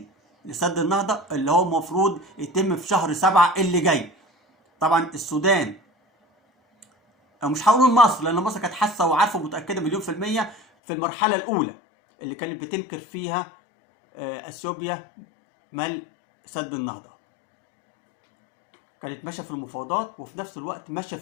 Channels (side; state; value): right; drops out; at 10.6 s